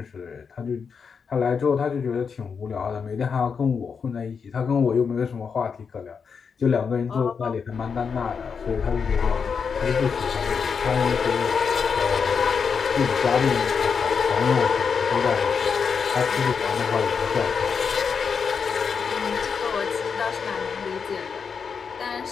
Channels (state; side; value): quieter; right; 6.0 dB